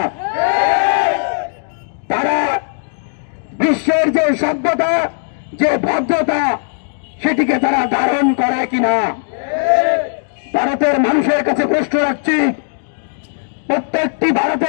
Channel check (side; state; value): right; silent; digital silence